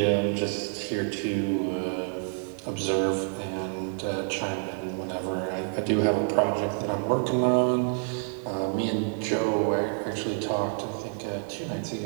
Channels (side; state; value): left; silent; 57 dB below the other